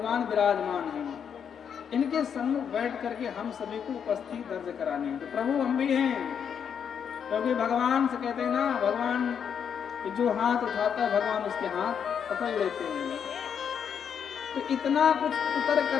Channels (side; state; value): right; quieter; 7.7 dB